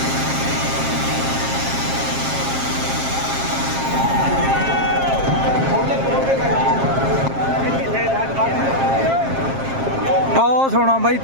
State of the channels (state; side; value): late; left; 7.5 ms